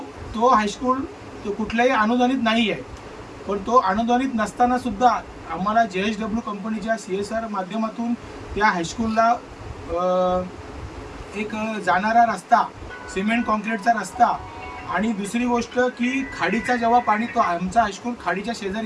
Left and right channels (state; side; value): identical; both; correlation 1.00